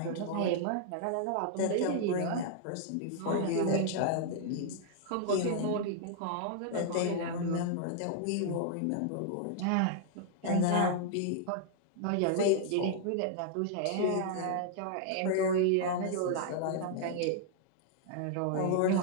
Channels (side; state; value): both; different; correlation -0.01